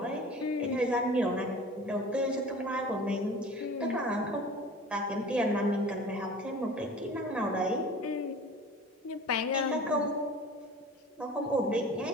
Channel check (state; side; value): normal; both; correlation 0.41